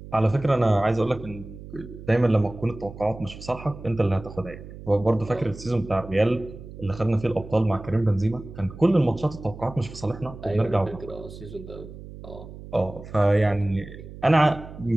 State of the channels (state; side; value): noise; right; hum, 14 dB below the sound